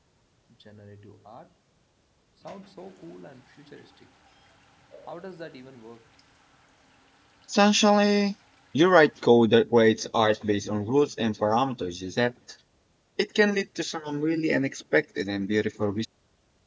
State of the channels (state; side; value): identical; both; correlation 1.00